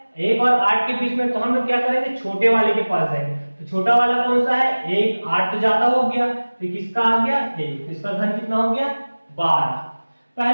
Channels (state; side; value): inverted; both; correlation -1.00